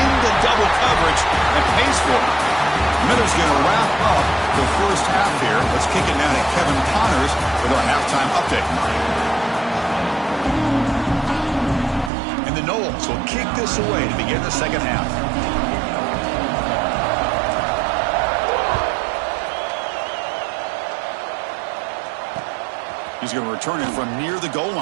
double coverage and pays for it. Miller's going to wrap up the first half here. Let's kick it now to Kevin Connors with our halftime update. And the Noles will kick this away to begin the second half. He's going to return it from near the goal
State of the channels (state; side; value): drops out; left; at 12.1 s